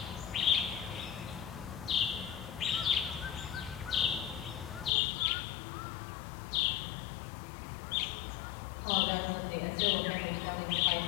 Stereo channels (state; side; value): drops out; right; at 4.9 s